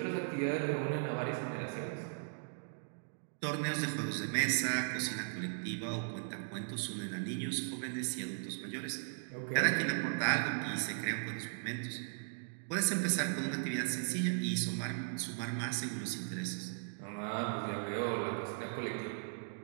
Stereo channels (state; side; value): silent; left; digital silence